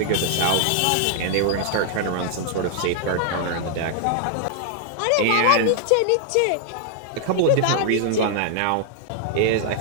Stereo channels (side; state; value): both; different; correlation 0.00